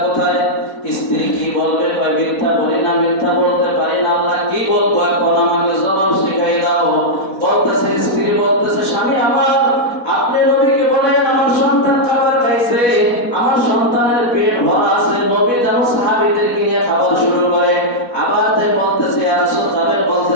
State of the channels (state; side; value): late; right; 4.2 ms